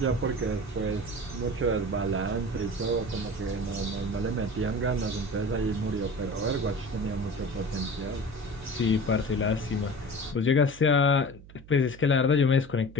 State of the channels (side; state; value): right; noise; hum, 19 dB below the sound